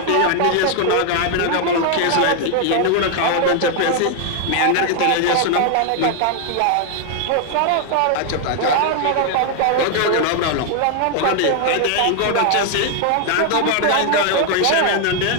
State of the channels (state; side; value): different; both; correlation 0.00